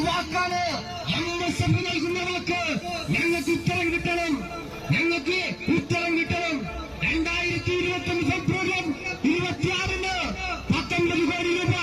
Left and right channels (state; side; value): identical; both; correlation 1.00